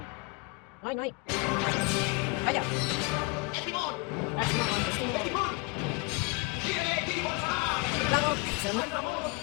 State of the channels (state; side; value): quieter; right; 27.3 dB